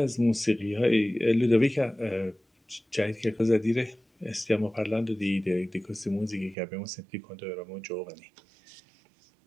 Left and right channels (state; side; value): drops out; left; at 6.6 s